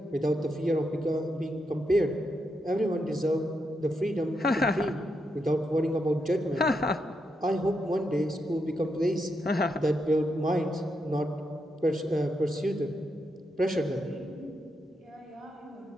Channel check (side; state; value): both; normal; correlation 0.83